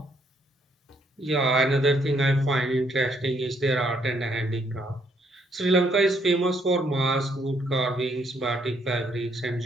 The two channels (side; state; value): both; normal; correlation 0.71